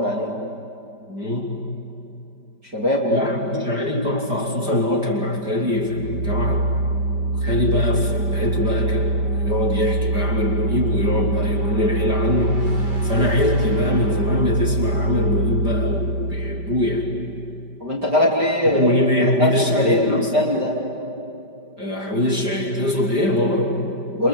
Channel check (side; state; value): left; late; 5.1 ms